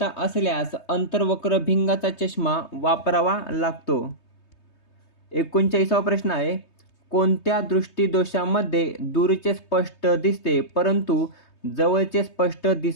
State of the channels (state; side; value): late; right; 3.2 ms